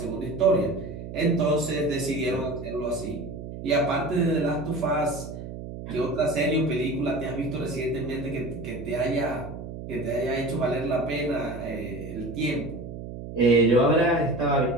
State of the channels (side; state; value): right; noise; hum, 10 dB below the sound